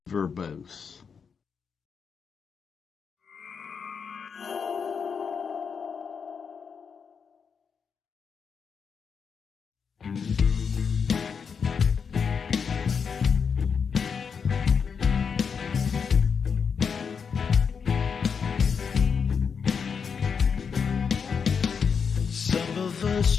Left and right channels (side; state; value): right; quieter; 6.2 dB